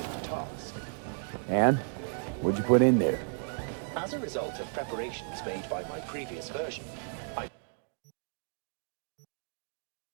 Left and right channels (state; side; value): silent; left; 56 dB below the other